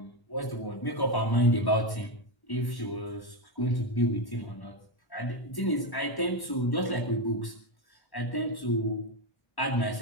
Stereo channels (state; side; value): late; right; 1.1 ms